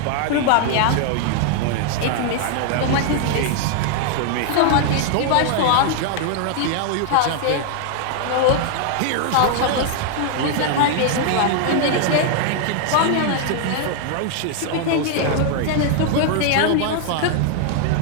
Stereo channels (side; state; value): both; different; correlation 0.00